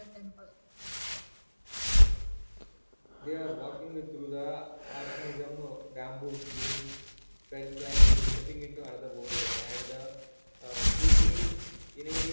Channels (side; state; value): both; inverted; correlation -1.00